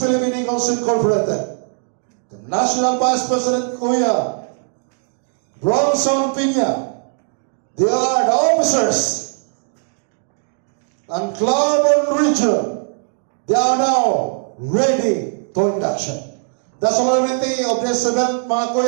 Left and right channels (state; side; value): silent; left; digital silence